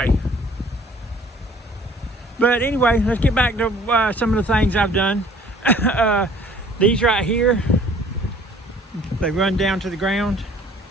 But anyway, let's get back to some of the things I've done. These right here, they run down to the ground.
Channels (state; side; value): normal; both; correlation 0.54